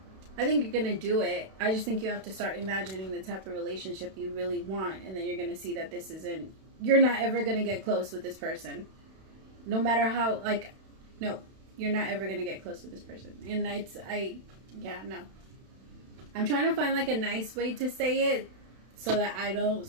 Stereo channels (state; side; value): late; left; 31 ms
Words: I think you're going to do it. I just think you have to start imagining the type of relationship you really want. And then you're going to see that this isn't, you're not ever going to get close with this person. No matter how, like, no. You're not ever going to get close with this person. And no. I'm trying to find, like, a nice way to say it, so that I don't